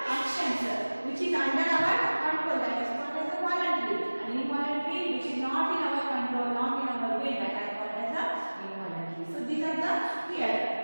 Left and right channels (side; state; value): both; inverted; correlation -1.00